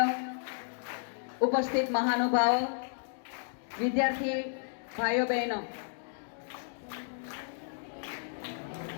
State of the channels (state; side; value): silent; right; digital silence